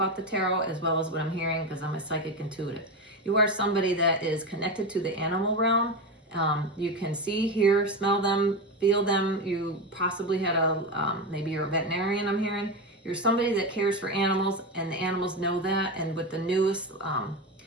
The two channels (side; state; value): both; normal; correlation 0.17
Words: the tarot, as well as what I'm hearing, because I'm a psychic intuitive. You are somebody that is connected to the animal realm. You can see, hear, smell them, feel them. You possibly had maybe you're a veterinarian, I'm hearing. You're somebody that cares for animals, and the animals know that. And with the newest